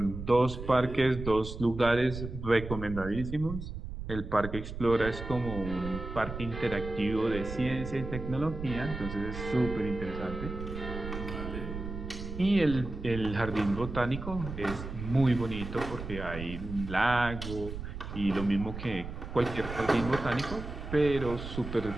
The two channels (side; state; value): right; noise; rumble, 8 dB below the sound